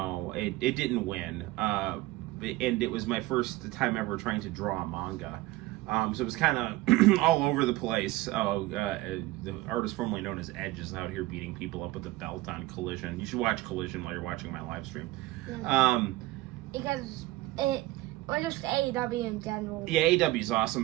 didn't win, and it was my first time ever trying to draw a manga, so it was kind of all over the place. The artist formerly known as Edge is out here beating people up with a belt on Collision. You should watch Collision while you're watching my live stream. Yeah. Because or just AEW in general. Yeah, AEW is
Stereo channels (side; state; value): left; quieter; 18.4 dB